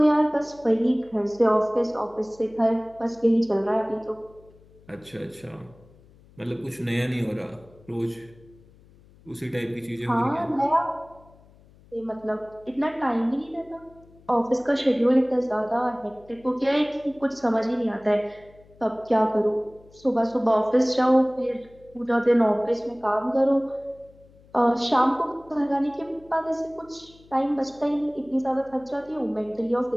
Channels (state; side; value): noise; left; hum, 26 dB below the sound